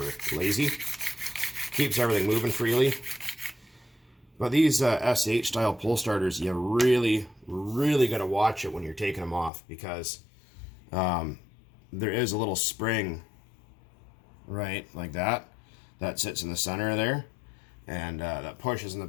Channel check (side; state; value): right; drops out; at 9.5 s